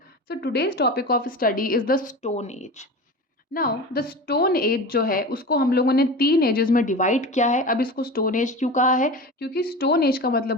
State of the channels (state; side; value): normal; both; correlation 0.31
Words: So today's topic of study is the Stone Age. Now the Stone Age जो है उसको हम लोगों ने तीन एजेस में डिवाइड किया है. अब इसको स्टोन एज क्यों कहा है? क्योंकि स्टोन एज का